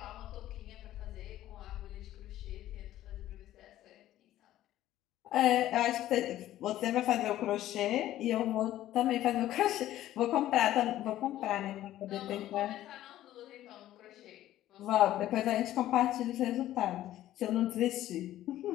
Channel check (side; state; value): right; quieter; 13.6 dB